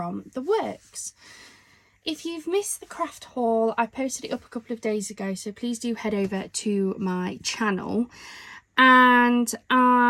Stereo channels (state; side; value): identical; both; correlation 1.00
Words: the works. If you've missed the craft haul, I posted it up a couple of days ago, so please do head over to my channel. And